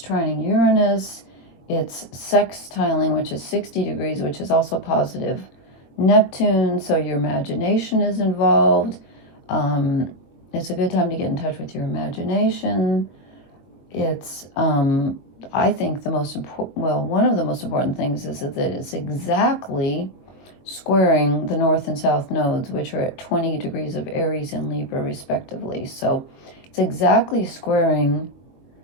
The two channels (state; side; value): late; right; 22 ms